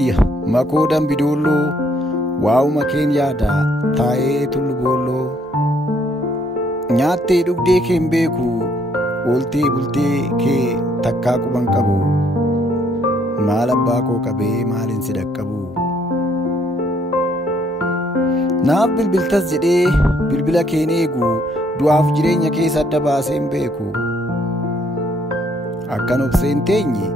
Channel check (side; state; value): both; normal; correlation 0.67